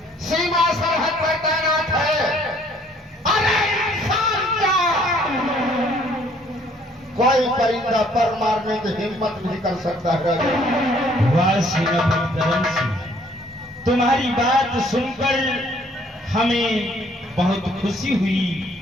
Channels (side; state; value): both; normal; correlation 0.61